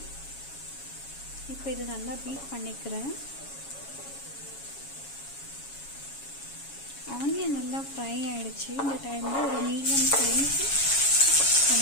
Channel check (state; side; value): late; right; 7.2 ms